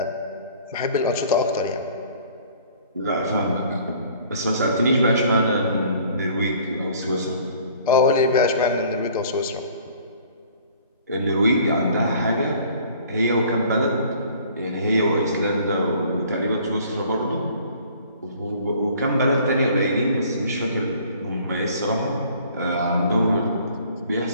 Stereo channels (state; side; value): inverted; both; correlation -0.53